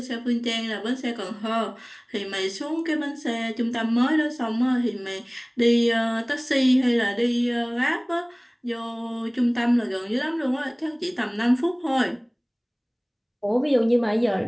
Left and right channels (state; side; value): identical; both; correlation 1.00